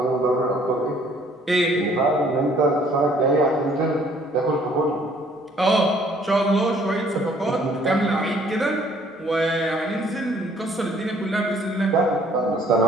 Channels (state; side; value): normal; both; correlation 0.60